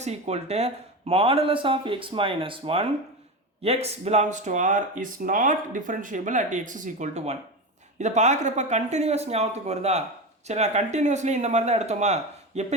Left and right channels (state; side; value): normal; both; correlation 0.21